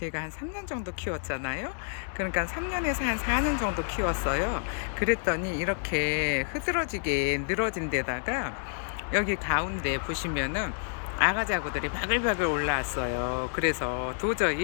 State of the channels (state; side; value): silent; right; digital silence